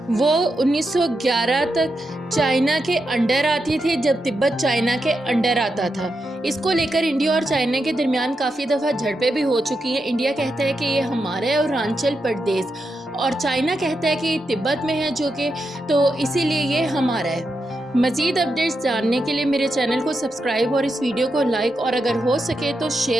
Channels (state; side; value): normal; both; correlation 0.86